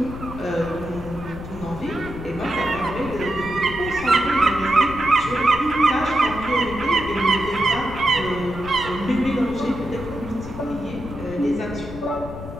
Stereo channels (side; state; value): left; noise; rumble, 12 dB below the sound